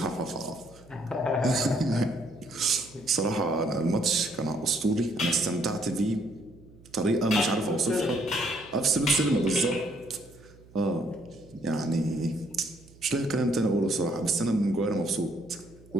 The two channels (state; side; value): noise; right; hum, 24 dB below the sound